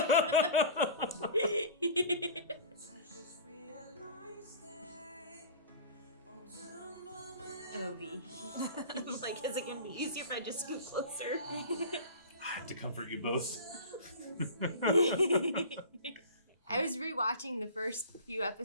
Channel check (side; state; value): both; inverted; correlation -0.37